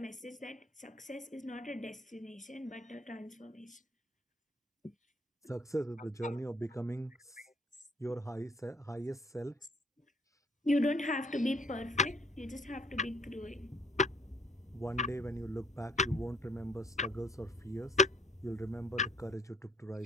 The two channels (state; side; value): normal; both; correlation 0.61